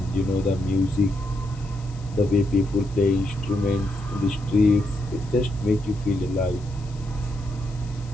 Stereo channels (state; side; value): noise; left; hiss, 24 dB below the sound